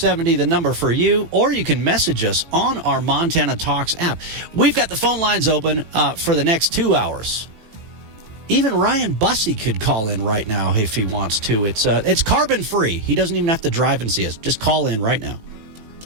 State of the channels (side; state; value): left; late; 18 ms